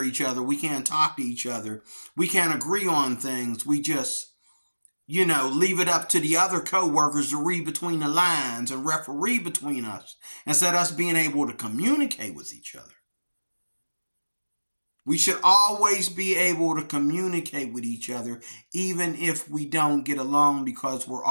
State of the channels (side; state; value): both; inverted; correlation -1.00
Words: each other. We can't talk to each other. We can't agree on things. We just, leave it up to the other co-workers to read between the lines and referee between us instead of us being able to communicate with each other. We should always be able to communicate with each other, even if we don't get along, because we're